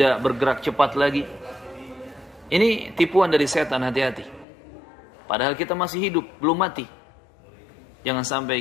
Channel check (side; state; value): right; drops out; at 4.5 s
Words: bergerak cepat lagi. Ini tipuan dari setan, hati-hati. Padahal kita masih hidup, belum mati. Jangan